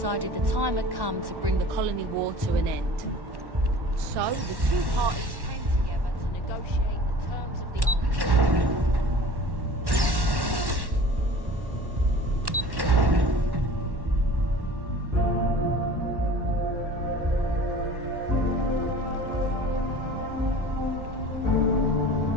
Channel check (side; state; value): left; late; 1.1 ms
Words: the time had come to bring the colony war to an end. So, the two parties came together to negotiate the terms of the armistice.